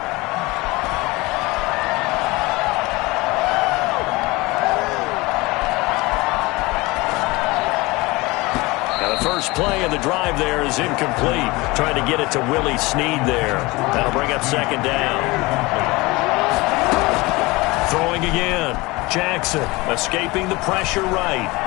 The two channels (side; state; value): right; quieter; 22.7 dB